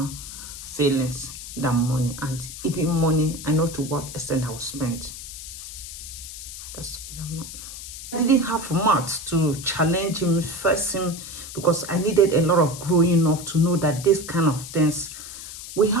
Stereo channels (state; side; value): noise; left; hiss, 11 dB below the sound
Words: feelings than money. And even money, I know to what extent I will spend. That's the way I'm not. I didn't have much to challenge him, face him, because I needed a lot of growing up to know that this kind of things will